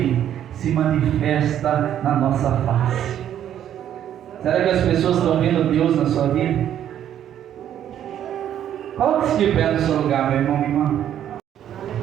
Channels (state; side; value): quieter; left; 10.5 dB